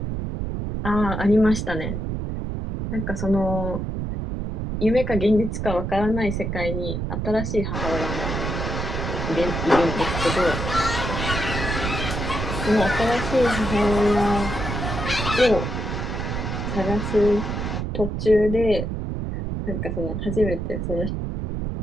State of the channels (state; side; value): noise; right; rumble, 3 dB below the sound